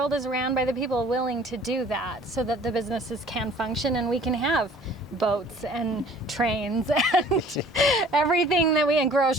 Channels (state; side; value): normal; both; correlation 0.51